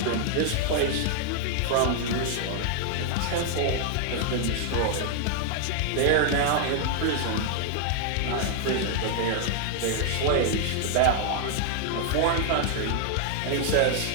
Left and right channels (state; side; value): different; both; correlation 0.00